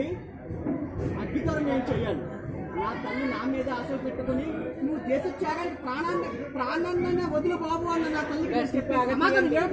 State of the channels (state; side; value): identical; both; correlation 1.00